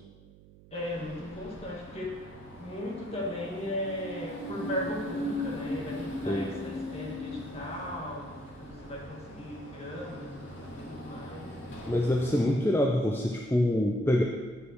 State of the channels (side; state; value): right; noise; hum, 22 dB below the sound